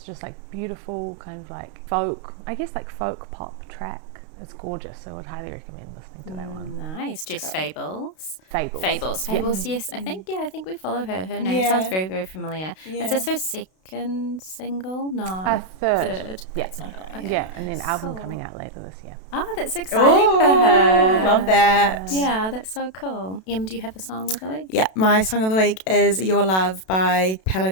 just like beautiful kind of like folk, I guess like folk pop track. It's gorgeous, so I would highly recommend listening to that one. Nice. Jess Fables. Fables, Yes. I think we follow her. Her name sounds very, very familiar. Yeah. Is this her second single? No. Third. Yeah. Okay. Yeah, and then album coming out later this year. Oh, that's exciting for her. Love that. Yeah, that's so cool. Em, do you have a song of the week? Yeah, my song of the week is Your Love by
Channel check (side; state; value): right; late; 32 ms